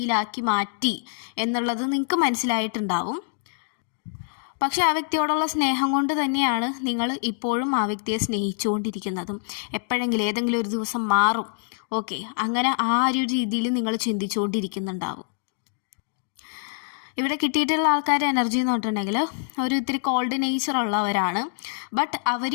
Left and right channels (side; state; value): right; silent; digital silence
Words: മാറ്റി എന്നുള്ളത് നിങ്ങൾക്ക് മനസ്സിലായിട്ടുണ്ടാവും. പക്ഷെ ആ വ്യക്തിയോടുള്ള സ്നേഹം കൊണ്ട് തന്നെയാണ് നിങ്ങൾ ഇപ്പോഴും ആ വ്യക്തിയെ സ്നേഹിച്ചുകൊണ്ടിരിക്കുന്നതും. എപ്പോഴെങ്കിലും ഏതെങ്കിലും ഒരു ദിവസം മാറും, ഓക്കെ, അങ്ങനെ ആ ഒരു രീതിയിൽ നിങ്ങൾ ചിന്തിച്ചുകൊണ്ടിരിക്കുന്നുണ്ടാവും. ഇവിടെ കിട്ടിയിട്ടുള്ള ആൾക്കാരുടെ എനർജി എന്ന് പറഞ്ഞിട്ടുണ്ടെങ്കിൽ ഒരു ഇത്തിരി കോൾഡ് നേച്ചർ ഉള്ളവരാണ്. ബട്ട്